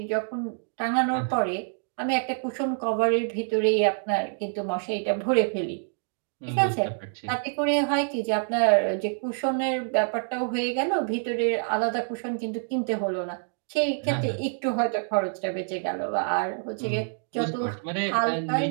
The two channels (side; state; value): left; silent; digital silence